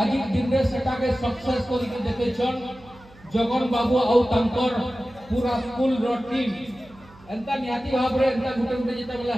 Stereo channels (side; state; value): right; noise; hum, 24 dB below the sound